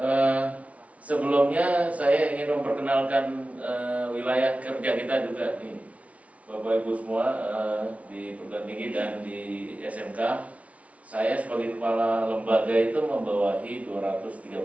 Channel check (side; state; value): left; late; 0.066 ms